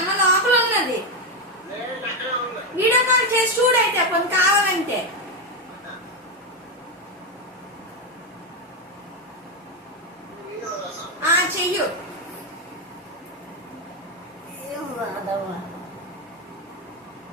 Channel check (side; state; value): both; normal; correlation 0.07